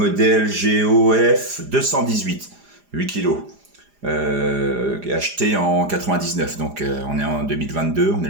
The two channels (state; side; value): late; left; 4.9 ms